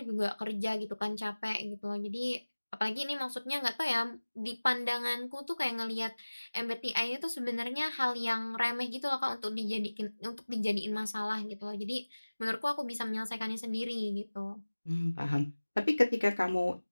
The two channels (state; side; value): inverted; both; correlation -1.00